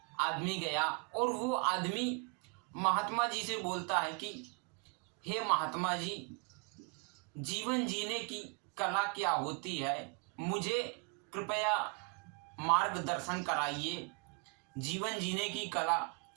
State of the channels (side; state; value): left; quieter; 33.4 dB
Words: आदमी गया और वो आदमी महात्मा जी से बोलता है कि हे महात्मा जी, जीवन जीने की कला क्या होती है, मुझे कृपया मार्गदर्शन कराइए जीवन जीने की कला,